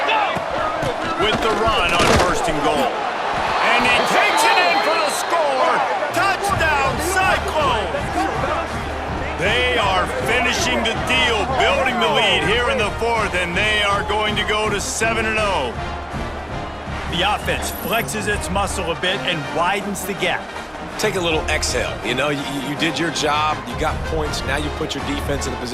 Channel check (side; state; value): both; identical; correlation 1.00